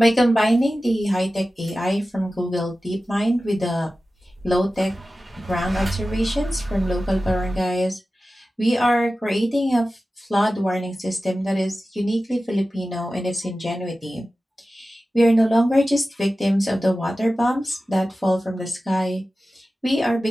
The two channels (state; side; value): normal; both; correlation 0.95